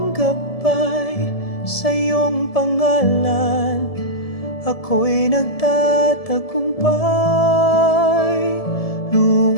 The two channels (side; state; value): right; late; 1.7 ms